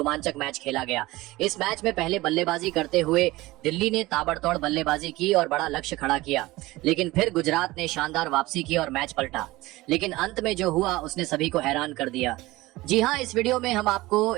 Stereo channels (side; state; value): left; quieter; 19.4 dB